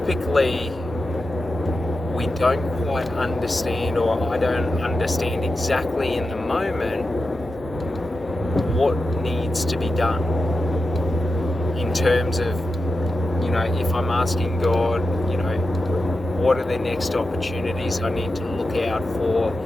we don't quite understand, or I don't understand exactly in the moment what needs to be done in terms of, if I'm asking God, what are the next opportunities I need to look out for,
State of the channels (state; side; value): normal; both; correlation 0.90